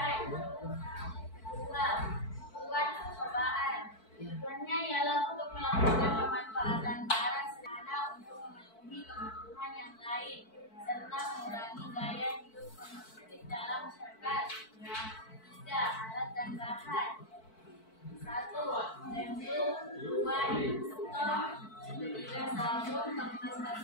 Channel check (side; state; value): right; late; 4.5 ms